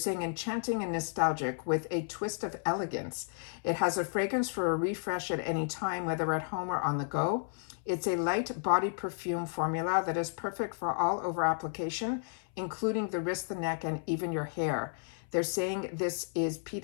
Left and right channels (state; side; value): silent; right; 56 dB below the other